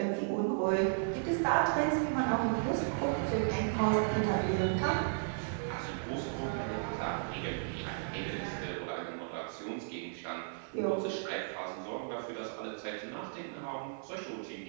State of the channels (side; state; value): left; silent; 55 dB below the other